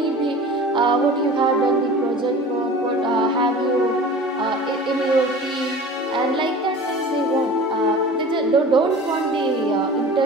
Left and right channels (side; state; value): both; normal; correlation 0.39